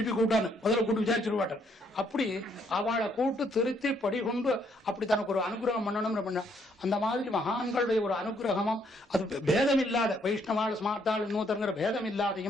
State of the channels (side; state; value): both; normal; correlation 0.70